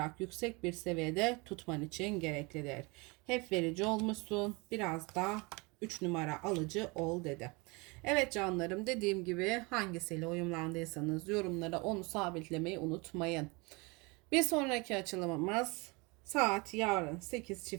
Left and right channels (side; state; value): left; quieter; 27.5 dB